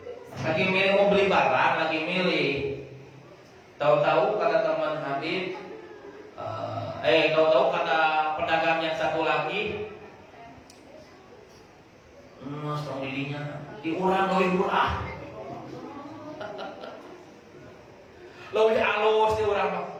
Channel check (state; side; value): identical; both; correlation 1.00